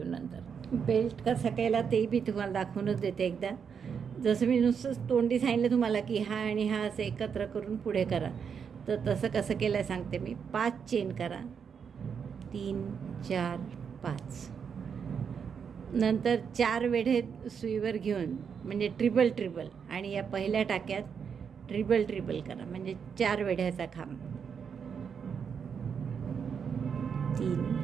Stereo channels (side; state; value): left; quieter; 6.8 dB